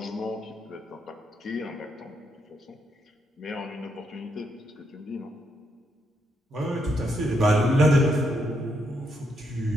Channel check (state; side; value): normal; both; correlation 0.78